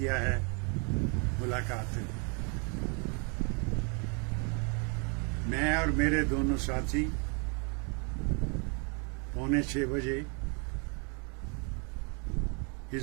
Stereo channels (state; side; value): quieter; left; 35.8 dB